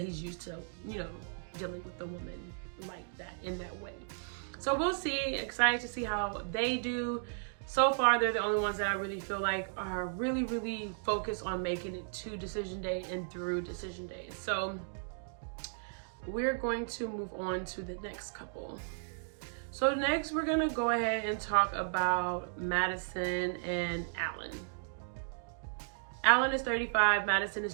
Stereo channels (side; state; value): left; silent; digital silence